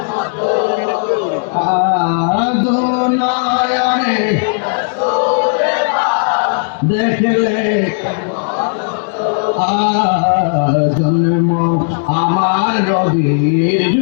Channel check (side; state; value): right; silent; digital silence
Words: দুনিয়ারে দেখলে জন্ম আমার নবীর